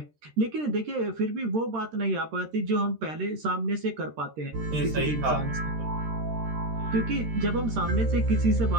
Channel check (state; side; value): late; left; 13 ms